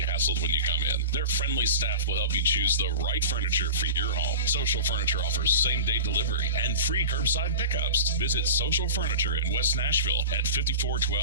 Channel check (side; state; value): both; inverted; correlation -0.31